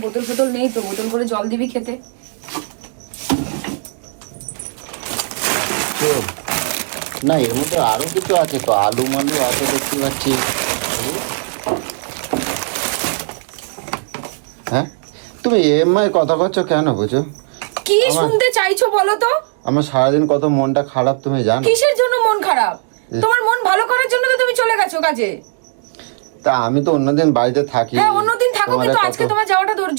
বোতল ফোতল নেই তো, বোতল করে জল দিবি খেতে। না এমনি তো আরো কিছু আছে তো, আলু মালু আছে দেখতে পাচ্ছি। হ্যাঁ তুমি এমআই কথা করছো কেন বুঝো? কি শুনতে চাইছো বলো তো? আমার সারাদিন কত মনটা খারাপ তুমি জানো? কিসের জন্য মন খারাপ? তোমার মন ভালো করার জন্য তো তুমি চলে গেছো কাজে। তা আমি তো অন্যদিন বাড়িতে থাকি। হ্যাঁ অন্যদিন থাকো, তোমার কিন্তু কত- আজকে তোমার যাওয়াটা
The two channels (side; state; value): left; silent; digital silence